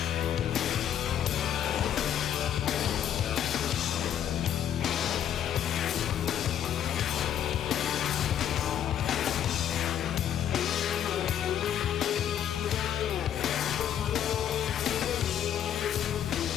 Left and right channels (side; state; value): right; quieter; 10.0 dB